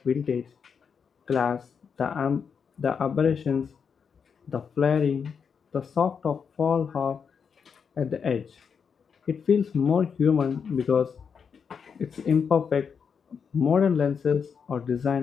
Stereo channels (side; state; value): right; quieter; 6.4 dB